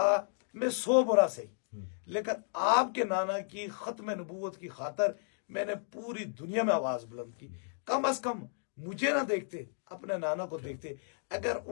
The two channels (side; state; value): right; silent; digital silence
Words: میں 100 برا صحیح, لیکن آپ کے نانا کی ختم نبوت کی خاطر میں نے پوری دنیا میں آواز بلند کی. کم از کم مجھے نہ دیکھتے, اپنے نانا کو دیکھتے. اگر